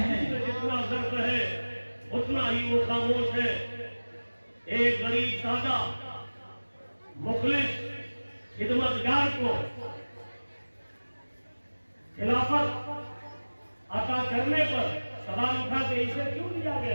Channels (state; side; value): inverted; both; correlation -1.00